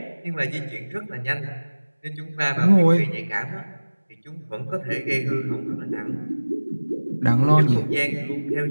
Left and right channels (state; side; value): inverted; both; correlation -1.00